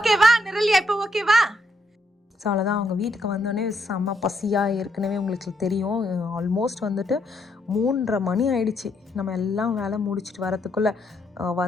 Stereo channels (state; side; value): normal; both; correlation 0.76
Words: நிரலியா? இப்போ ஓகேவா? ஸோ அவ்வளோதான். அவங்க வீட்டுக்கு வந்தோடனே செம்ம பசியாக ஏற்கனவே உங்களுக்கு தெரியும். ஆல்மோஸ்ட் வந்துட்டு 3:30 மணி ஆயிடுச்சு. நம்ம எல்லாம் வேலை முடிச்சுட்டு வரத்துக்குள்ளே